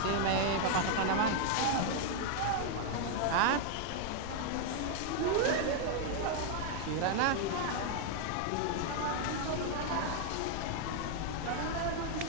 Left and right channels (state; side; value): different; both; correlation 0.00